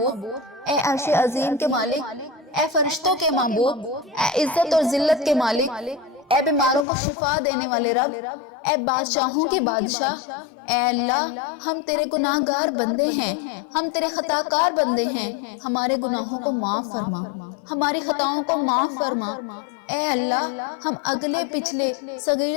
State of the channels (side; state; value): right; drops out; at 6.9 s